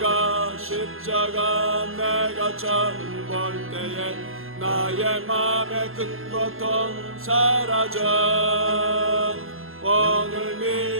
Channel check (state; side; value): late; left; 0.61 ms